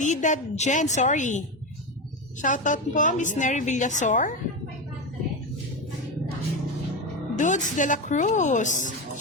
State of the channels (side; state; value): both; normal; correlation 0.16